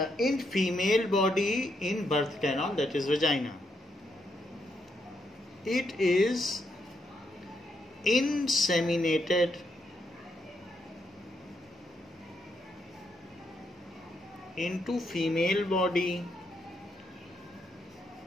in female body in birth canal, that is vagina. It is inseminated into female body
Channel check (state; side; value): normal; both; correlation 0.78